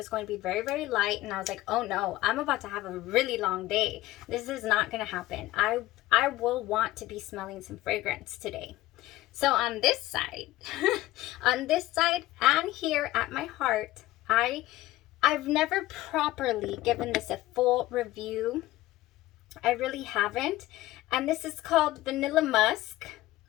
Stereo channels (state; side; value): quieter; right; 16.8 dB